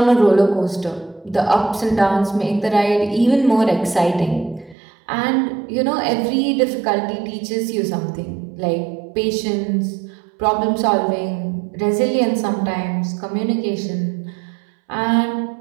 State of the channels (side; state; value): left; drops out; at 4.8 s